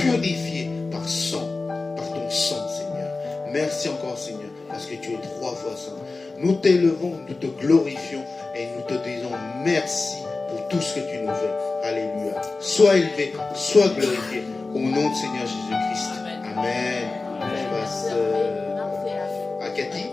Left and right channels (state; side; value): quieter; right; 3.7 dB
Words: par ton sang, Seigneur. Merci encore, Seigneur, parce que tu es 3 fois saint. Nous t'élevons, nous te glorifions et nous te disons merci pour tout ce que tu nous fais. Alléluia. Sois élevé, sois glorifié au nom de Seigneur Jésus-Christ. Amen. Je passe à Cathy